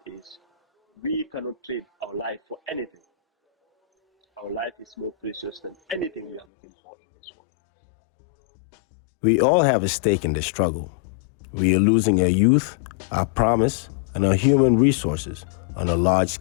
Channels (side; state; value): right; drops out; at 6.5 s